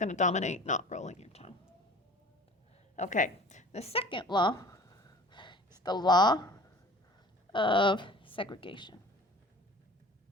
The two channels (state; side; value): normal; both; correlation 0.43